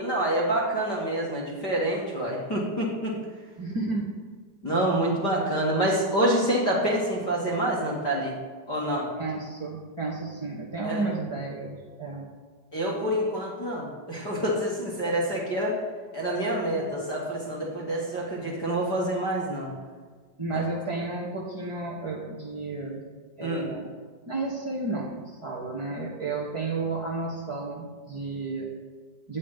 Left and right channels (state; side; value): late; right; 5.1 ms